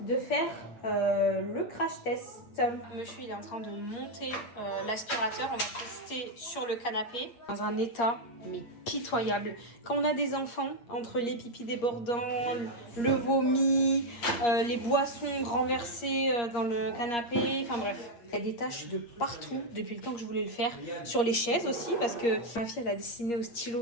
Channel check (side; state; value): right; late; 8.5 ms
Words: de faire le crash test. Monsieur il est en train de monter l'aspirateur. On va tester sur le canapé. Dans un état mais pitoyable. Quand on a des enfants, entre les pipis débordants, le vomi, les boissons renversées dans le canapé, enfin bref. Il y a des taches de partout depuis le temps que je voulais le faire. Sur les chaises aussi, parce que ma fille elle a dessiné au